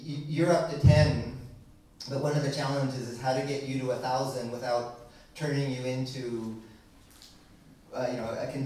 you're up to 10, but one of the challenges is how to get you to 1,000 without turning you into a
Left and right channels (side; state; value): both; identical; correlation 1.00